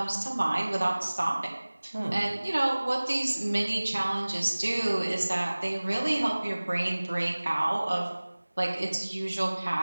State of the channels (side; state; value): both; inverted; correlation -1.00